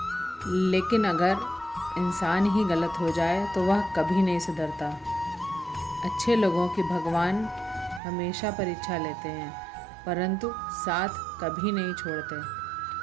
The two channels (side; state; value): left; drops out; at 8.0 s